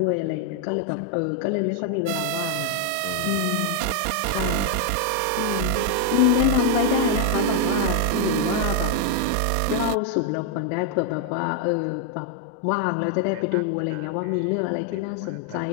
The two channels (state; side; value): different; both; correlation 0.00